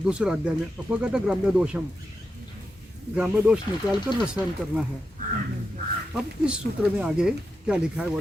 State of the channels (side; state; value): both; normal; correlation 0.87